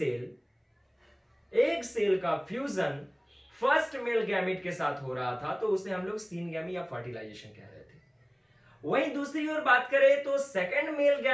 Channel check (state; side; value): identical; both; correlation 1.00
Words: सेल का फ्यूजन फर्स्ट मेल गैमेट के साथ हो रहा था तो उसे हम लोग सीनगैमी या फर्टिलाइजेशन कह रहे थे। वहीं दूसरी ओर बात करें तो सेकेंड मेल